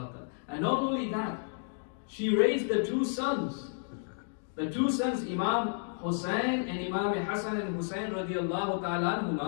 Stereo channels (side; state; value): right; silent; digital silence